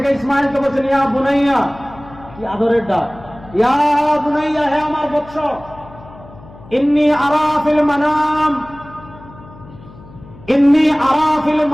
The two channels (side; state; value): left; noise; hum, 20 dB below the sound